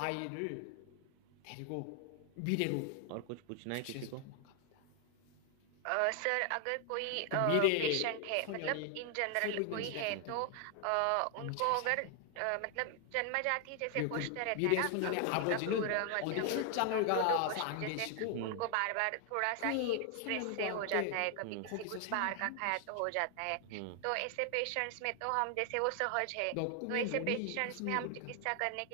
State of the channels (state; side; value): different; both; correlation 0.00